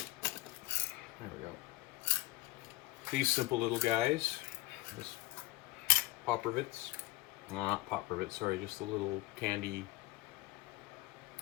we go. These simple little guys, just pop rivets. No, not pop rivets, sorry, just the little candy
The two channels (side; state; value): right; quieter; 19.0 dB